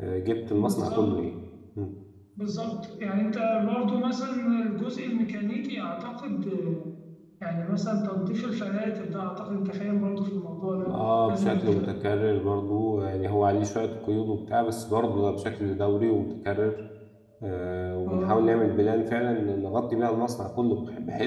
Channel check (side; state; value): both; identical; correlation 1.00